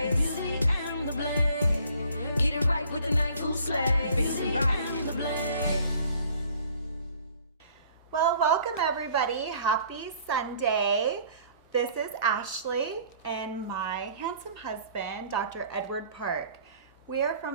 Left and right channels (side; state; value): both; inverted; correlation -0.55